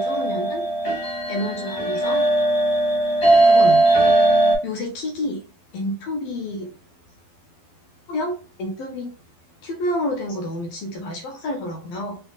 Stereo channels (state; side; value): late; right; 12 ms